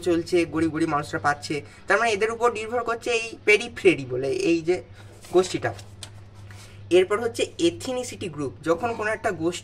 চলছে, গরিব গরিব মানুষরা পাচ্ছে, তার মানে এদের উপর নির্ভর করছে এই পেরিফেরি বলে এই যে গোষ্ঠীটা। এরপর হচ্ছে এথনিসিটি গ্রুপ, যখন কোনো একটা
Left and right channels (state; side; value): identical; both; correlation 1.00